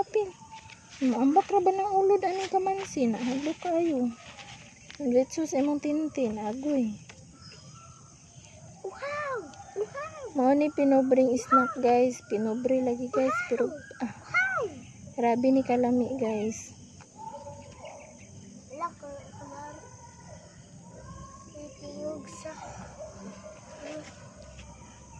Maambak ra ba ng ulod ani kamansi na hadlok kayo. Letso sa imong tintin agoy. Wow! Mao ni pinobring snack guys. Pinobre lagi guys pero grabe ni kalami guys.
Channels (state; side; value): identical; both; correlation 1.00